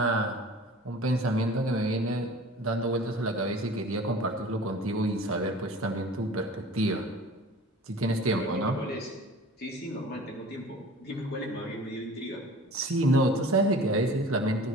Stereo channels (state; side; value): normal; both; correlation 0.43